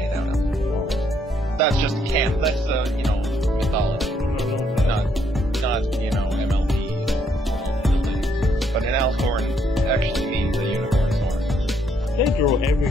out of. That's just camp. That's mythology, not MLP. But an alicorn actually means a unicorn's horn. They throw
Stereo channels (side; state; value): both; normal; correlation 0.72